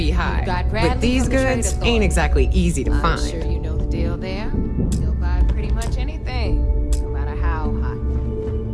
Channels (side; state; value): both; identical; correlation 1.00